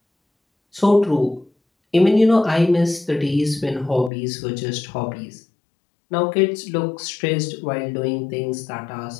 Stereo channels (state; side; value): drops out; right; at 4.1 s